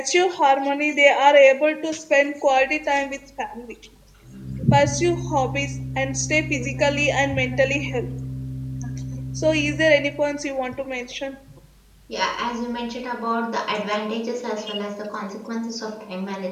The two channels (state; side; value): identical; both; correlation 1.00